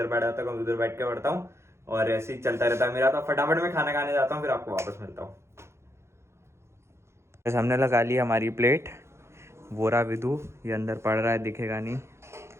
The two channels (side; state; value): left; late; 0.13 ms